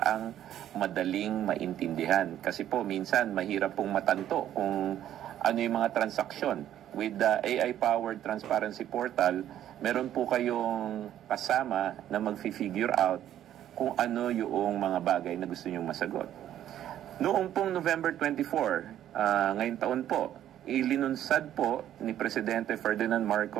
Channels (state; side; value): quieter; left; 11.5 dB